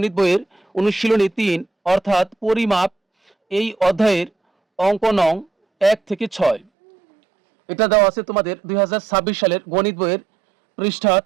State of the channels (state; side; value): drops out; left; at 6.7 s